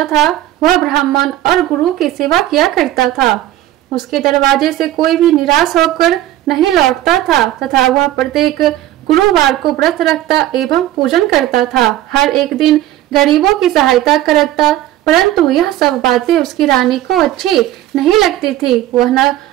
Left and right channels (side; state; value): left; quieter; 14.1 dB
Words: था। वह ब्राह्मण और गुरु की सेवा किया करता था। उसके दरवाजे से कोई भी निराश होकर नहीं लौटता था तथा वह प्रत्येक गुरुवार को व्रत रखता एवं पूजन करता था। हर एक दिन गरीबों की सहायता करता, परंतु यह सब बातें उसकी रानी को अच्छी नहीं लगती थी। वह न